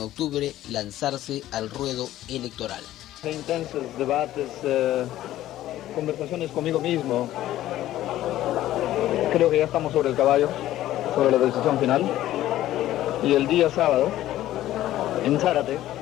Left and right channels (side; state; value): right; quieter; 14.0 dB